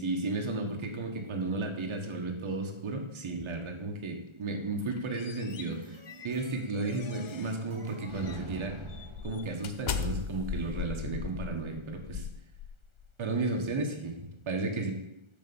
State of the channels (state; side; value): late; left; 1.3 ms